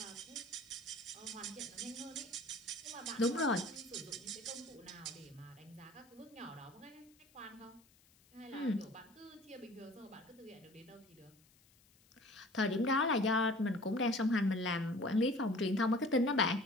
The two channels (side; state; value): left; noise; hiss, 30 dB below the sound